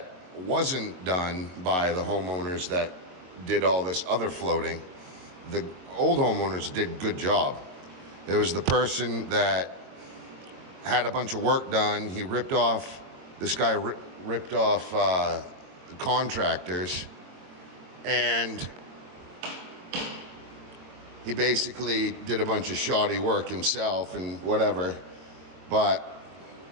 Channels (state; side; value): late; left; 22 ms